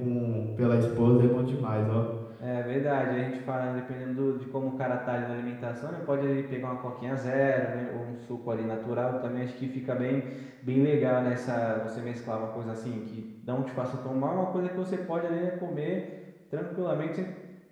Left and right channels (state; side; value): identical; both; correlation 1.00